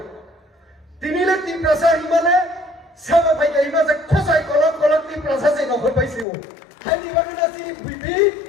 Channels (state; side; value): drops out; right; at 6.2 s